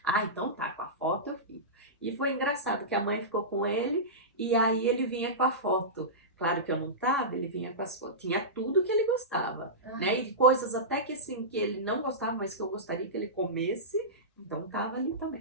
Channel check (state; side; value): normal; both; correlation -0.17